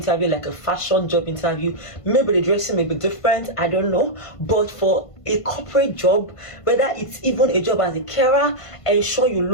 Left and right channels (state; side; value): late; right; 1.5 ms